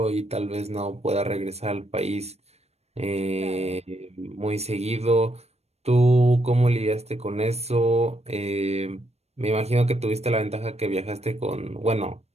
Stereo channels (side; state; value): left; late; 0.31 ms